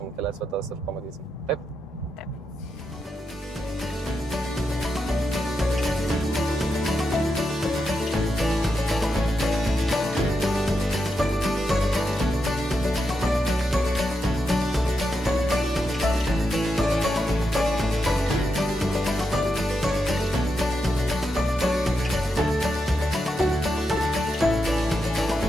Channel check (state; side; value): normal; both; correlation 0.85